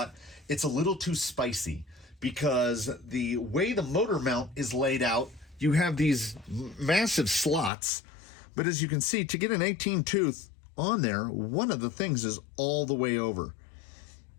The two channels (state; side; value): drops out; right; at 7.7 s